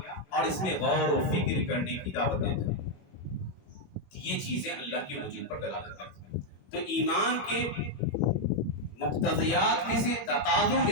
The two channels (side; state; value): right; late; 21 ms